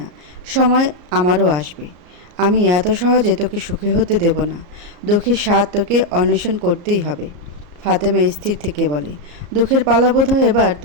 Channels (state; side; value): late; left; 34 ms